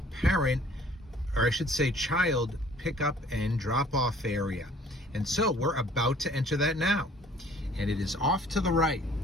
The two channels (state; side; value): normal; both; correlation 0.54